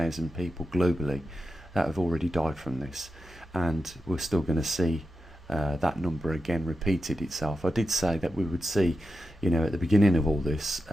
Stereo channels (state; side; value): normal; both; correlation 0.90